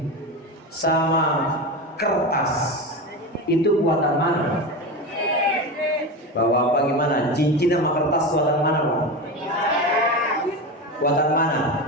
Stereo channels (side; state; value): both; normal; correlation 0.22